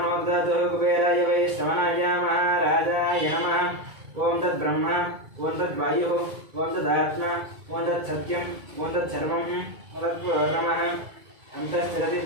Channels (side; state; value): left; late; 2.3 ms